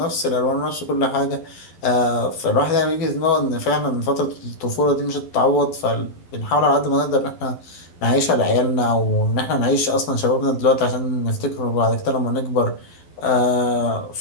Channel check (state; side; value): late; right; 11 ms